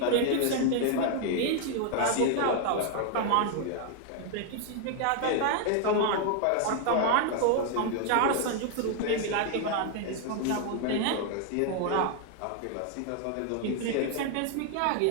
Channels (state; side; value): different; both; correlation 0.00